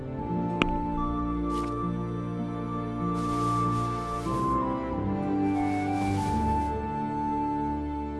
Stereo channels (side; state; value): both; identical; correlation 1.00